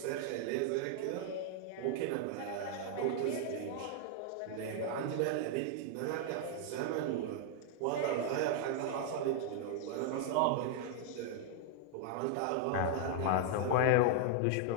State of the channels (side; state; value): both; different; correlation 0.00